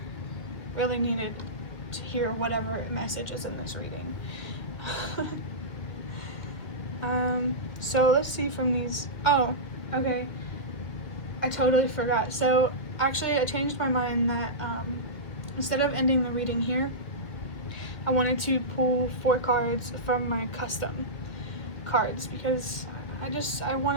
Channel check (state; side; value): late; right; 2.1 ms